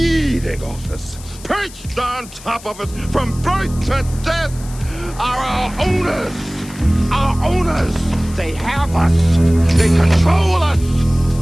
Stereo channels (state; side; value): noise; left; hiss, 18 dB below the sound